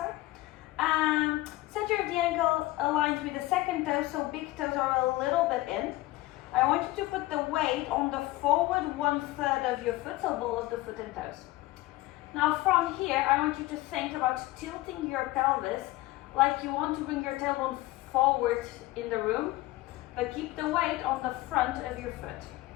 Center of the ankle aligned with the second toe, so big toes are a little bit in. I want you to put the weight on the forward 1/3 of your foot, so ball of the foot and toes. Now from here, I want you to think about tilting your pelvis like you want to bring your tailbone forward in the room, but keep the weight on the front of your foot.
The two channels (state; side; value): quieter; right; 18.3 dB